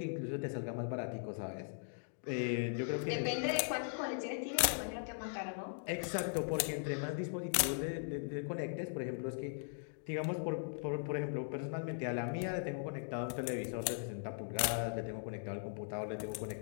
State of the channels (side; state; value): right; silent; digital silence